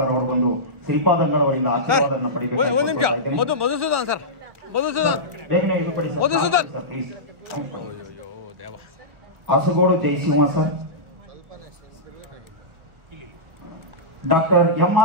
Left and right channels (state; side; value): late; left; 1.4 ms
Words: ಅವರು ಬಂದು ಶ್ರೀಪಾದಂಗಳವರಿಂದ ಆಶೀರ್ವಾದವನ್ನು ಪಡೆಯಬೇಕು. ಮಧುಸೂದನ್ ಸರ್, ಮಧುಸೂದನ್ ಬೇಗನೆ ಇಳುಪಡಿ Madhusudan sir please. Asagod Jayasimha sir. Doctor